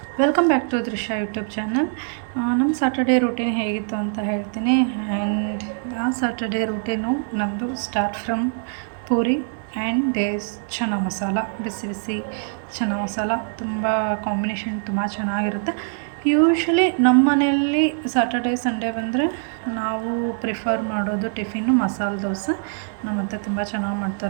welcome back to Drishya YouTube channel. ನಮ್ಮ Saturday routine ಹೇಗಿತ್ತು ಅಂತ ಹೇಳ್ತೀನಿ. ಆ್ಯಂಡ್ ಆ ಸ್ಯಾಟರ್ಡೇ ರೂಟೀನು ನಮ್ಮದು start from puri and these chana masala. ಬಿಸಿ ಬಿಸಿ ಚನ್ನ ಮಸಾಲ ತುಂಬ ಕಾಂಬಿನೇಷನ್ ತುಂಬ ಚೆನ್ನಾಗಿರುತ್ತೆ. ಯೂಶ್ವಲಿ ನಮ್ಮ ಮನೆಯಲ್ಲಿ ಸ್ಯಾಟರ್ಡೇ ಸಂಡೇ ಬಂದರೆ ನಾವು ಪ್ರಿಫರ್ ಮಾಡೋದು ಟಿಫಿನ್ನು ಮಸಾಲೆ ದೋಸೆ. ನಮ್ಮ ಅತ್ತೆ ತುಂಬ ಚೆನ್ನಾಗಿ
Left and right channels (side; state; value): left; silent; digital silence